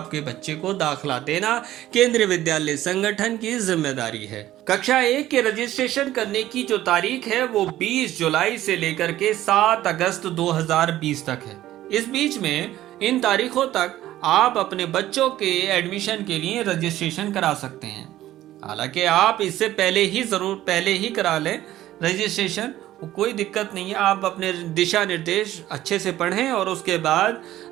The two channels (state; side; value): quieter; left; 14.1 dB